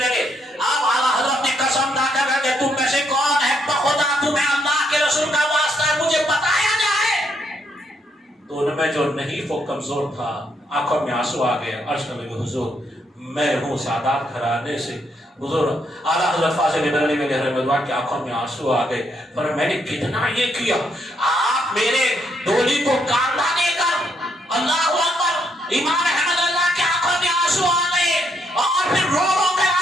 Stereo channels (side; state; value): both; normal; correlation 0.75